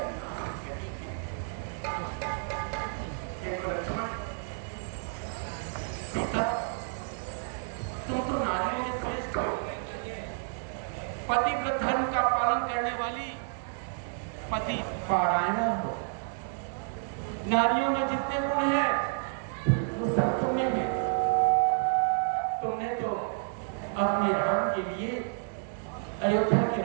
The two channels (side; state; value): left; silent; digital silence